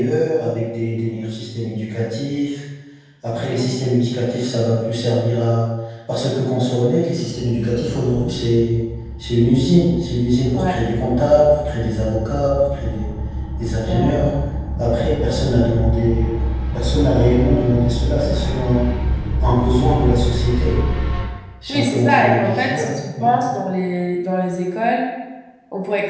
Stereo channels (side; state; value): both; identical; correlation 1.00